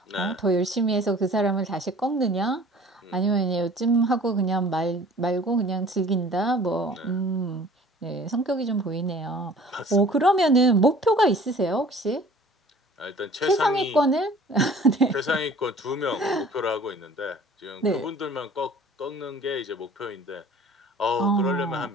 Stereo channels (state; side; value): normal; both; correlation 0.49